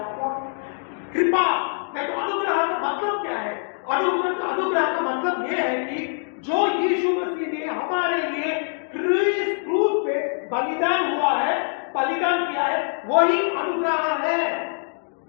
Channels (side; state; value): right; silent; digital silence